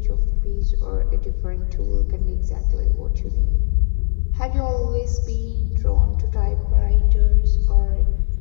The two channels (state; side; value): silent; right; digital silence